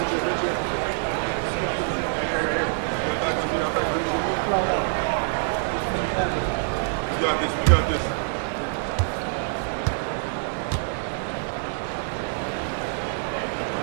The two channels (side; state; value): left; silent; digital silence